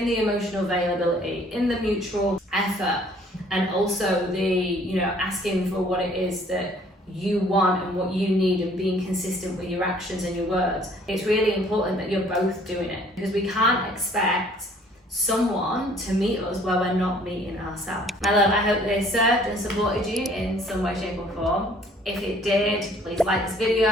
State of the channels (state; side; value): normal; both; correlation 0.57